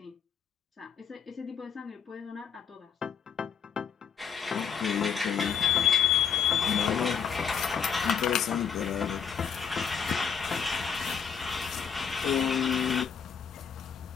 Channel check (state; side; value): quieter; right; 7.3 dB